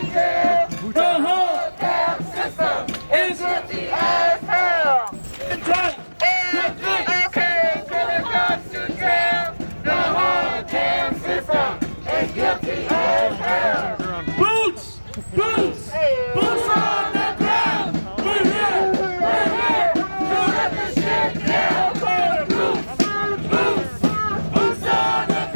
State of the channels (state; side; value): inverted; both; correlation -1.00